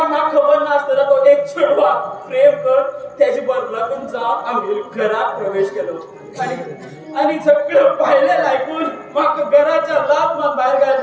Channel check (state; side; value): identical; both; correlation 1.00